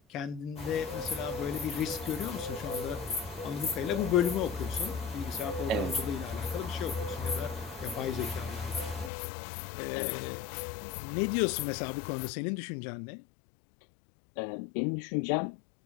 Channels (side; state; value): right; drops out; at 9.1 s